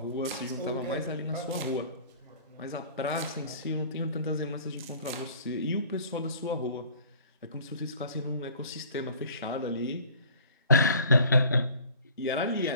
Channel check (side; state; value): both; inverted; correlation -0.49